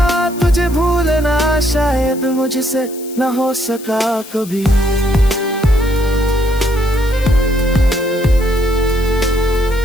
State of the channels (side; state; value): left; noise; hiss, 17 dB below the sound